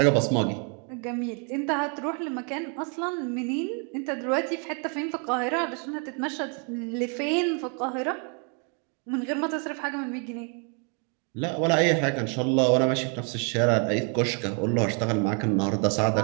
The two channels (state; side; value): quieter; left; 39.0 dB